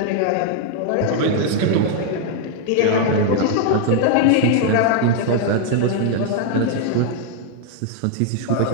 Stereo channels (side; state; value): both; different; correlation 0.00